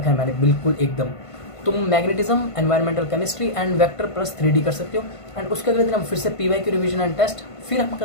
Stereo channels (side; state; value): right; late; 1.5 ms